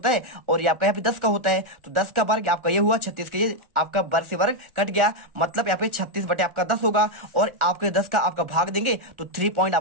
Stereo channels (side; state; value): left; late; 1.4 ms